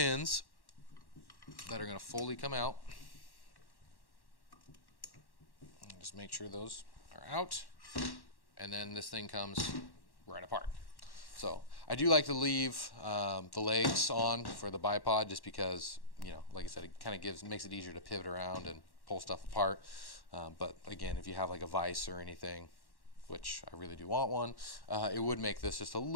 that are going to fully come out. Just make sure those are out, and then this thing comes right apart. So I do like to leave the legs on for the bipod, just because, like I said, it kind of makes it easier to pivot around and pull stuff apart. But again, if you have like a vise or anything, which I really do want one, it would make this just a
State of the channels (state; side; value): late; right; 1.1 ms